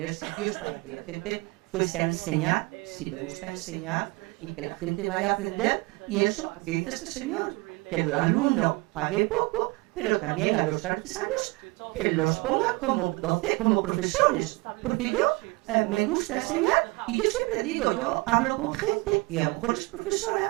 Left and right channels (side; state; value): left; quieter; 24.7 dB